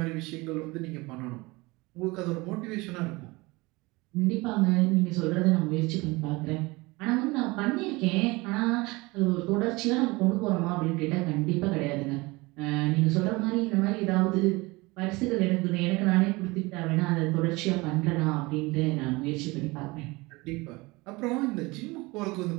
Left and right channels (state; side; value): quieter; left; 23.4 dB